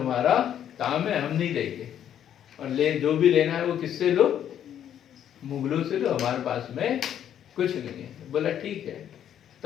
काम है, हम नहीं देंगे, और ले जो भी लेना है वो किससे लो? मुगलों से लो, हमारे पास में कुछ नहीं है। बोला ठीक है,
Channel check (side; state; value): right; quieter; 10.0 dB